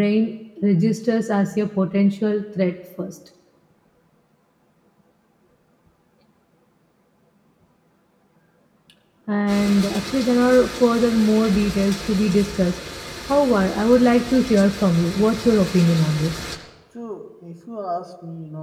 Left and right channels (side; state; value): both; identical; correlation 1.00